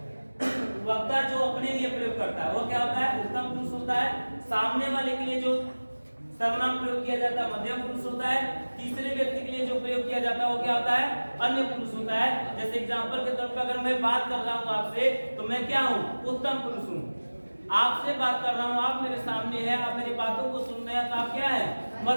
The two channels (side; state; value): both; inverted; correlation -1.00